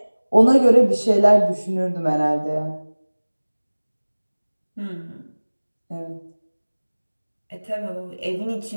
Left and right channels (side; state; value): both; inverted; correlation -1.00